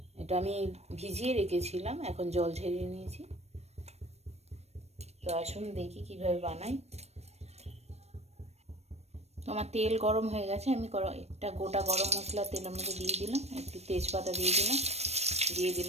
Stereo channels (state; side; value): late; left; 0.31 ms